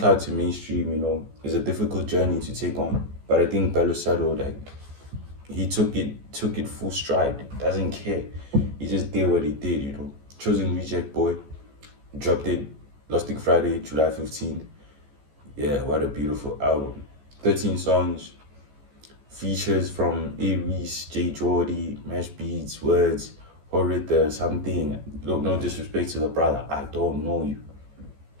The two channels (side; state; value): left; late; 14 ms